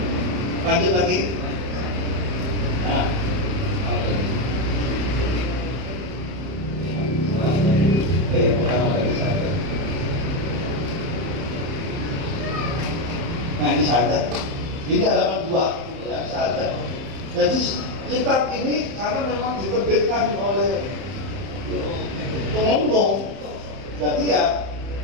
Lanjut lagi. Nah, nah ini syahadat. Ini halaman 2 ya, syahadat. Jadi kitab ini karena memang diterbitkan oleh pengombong, jadi ya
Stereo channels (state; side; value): late; left; 31 ms